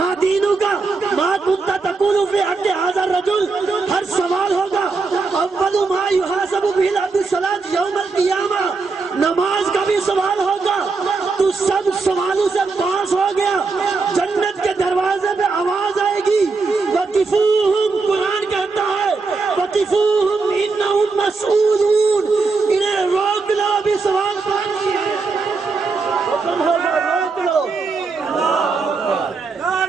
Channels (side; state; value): left; quieter; 4.3 dB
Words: دینک ما کنت تقول فی حق ھذا الرجل، ہر سوال ہوگا۔ اول ما یحاسب بہ العبد الصلاۃ یوم القیامہ، نماز کا بھی سوال ہوگا، تو سب سوالوں سے پاس ہو گیا، جنت کے دروازے پہ آواز آئے گی، وقفوہم، قرآن کہتا ہے وقفوہم انہم مسئولون، انہیں روک لو، بھی سوال باقی ہے، حکم ہوگا روک لو۔